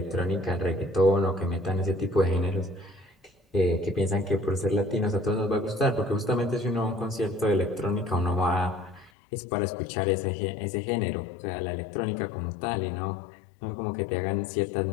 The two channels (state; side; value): drops out; right; at 9.1 s